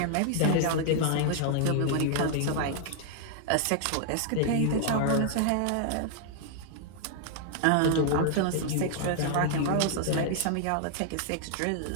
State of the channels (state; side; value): different; both; correlation 0.00